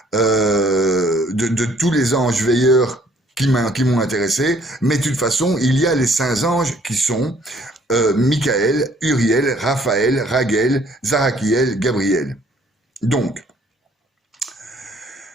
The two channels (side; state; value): both; normal; correlation 0.61